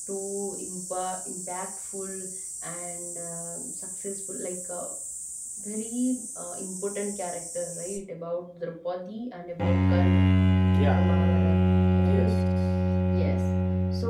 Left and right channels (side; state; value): both; identical; correlation 1.00